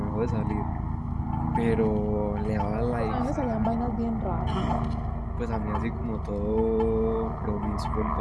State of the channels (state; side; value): identical; both; correlation 1.00